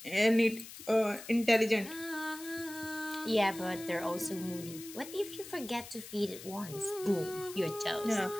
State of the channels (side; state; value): left; noise; hiss, 14 dB below the sound